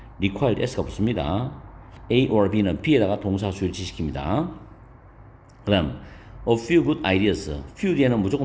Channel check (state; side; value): identical; both; correlation 1.00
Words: required S가 붙습니다. A or B는 B에다가 동사 수일치시킵니다. 그 다음 a few good ideas. few 뒤에는